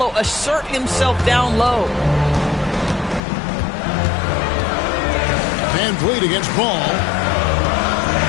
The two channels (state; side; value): drops out; right; at 3.2 s